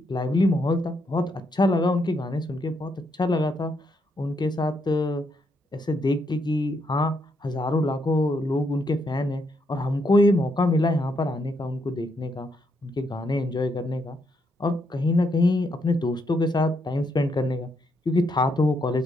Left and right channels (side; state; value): both; normal; correlation 0.77